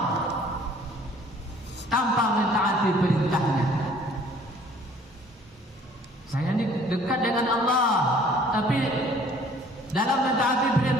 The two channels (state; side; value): normal; both; correlation 0.55